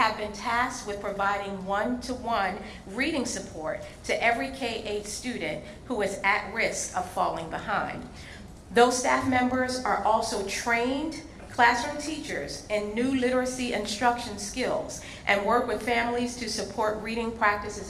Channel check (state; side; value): identical; both; correlation 1.00